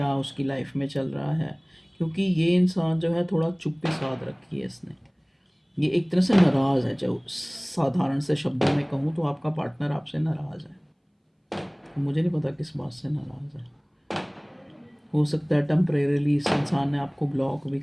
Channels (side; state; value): both; identical; correlation 1.00